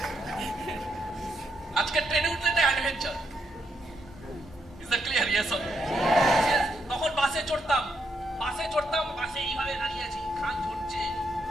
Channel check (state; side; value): normal; both; correlation 0.78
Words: আজকে ট্রেনে উঠলে একটা adventure. Is that clear? Yes or no? তখন বাসে চড়তাম, বাসে এইভাবে দাঁড়িয়ে আছি, খান ঝরছে,